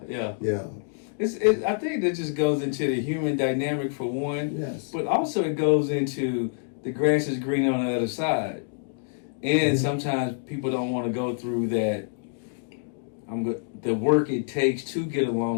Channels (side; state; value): right; silent; digital silence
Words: think that just goes into the human dynamic for one. Yes. But also it goes into the grass is green on the other side. And sometimes people don't want to go through that. The work it takes to get